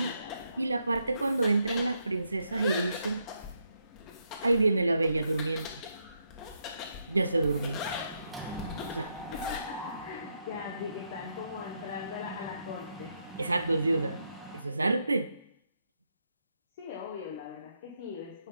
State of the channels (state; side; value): inverted; both; correlation -0.78